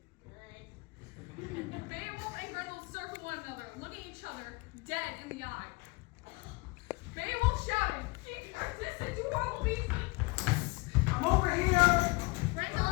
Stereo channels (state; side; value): quieter; right; 26.4 dB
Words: Beowulf and Grendel circled one another, looking each other dead in the eye. Beowulf shouted, "Seek our distance, you horrible beast!" I'm over here! Grendel